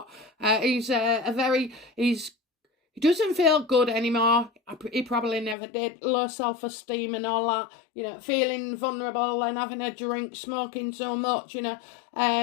He doesn't feel good anymore. He probably never did. Low self-esteem and all that. You know, feeling vulnerable and having a drink, smoking so much. You know,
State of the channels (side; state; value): right; drops out; at 5.6 s